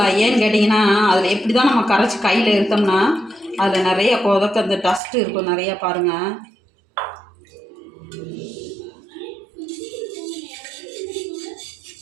ஏன்னு கேட்டிங்கன்னா, அதில் எப்படி தான் நம்ம கரைச்சி கையில் இருத்தோம்னா அதில் நிறைய கொதக்க அந்த டஸ்ட்டு இருக்கும் நிறையா. பாருங்கள்,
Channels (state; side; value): drops out; left; at 5.0 s